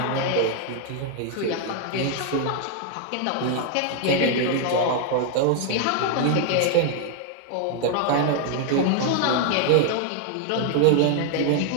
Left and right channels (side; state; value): both; different; correlation 0.00